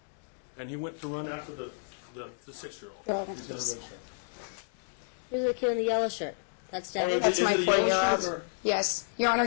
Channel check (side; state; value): right; silent; digital silence